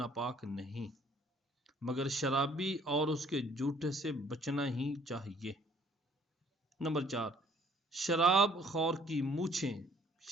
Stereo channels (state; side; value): normal; both; correlation 0.60